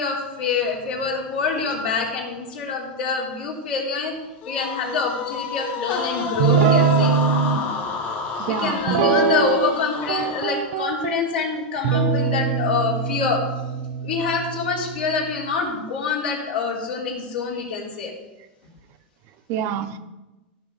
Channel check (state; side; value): normal; both; correlation 0.04